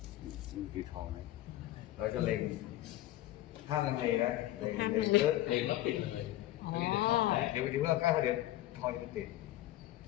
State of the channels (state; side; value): quieter; right; 15.0 dB